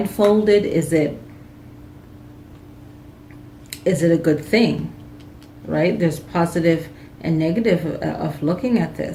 Is it a good thing, right? There's positive and negative of looking at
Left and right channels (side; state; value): both; identical; correlation 1.00